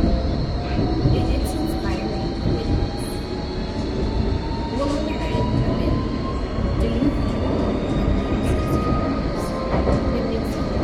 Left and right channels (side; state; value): both; identical; correlation 1.00